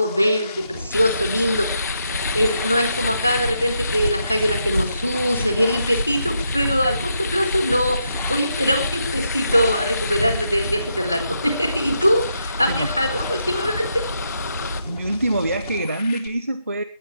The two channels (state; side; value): inverted; both; correlation -0.80